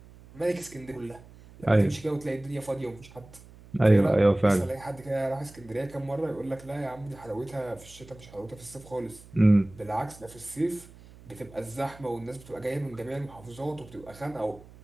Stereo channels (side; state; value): right; noise; hum, 21 dB below the sound